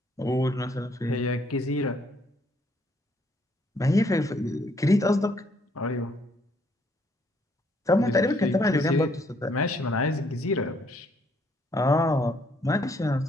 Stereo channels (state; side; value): normal; both; correlation 0.68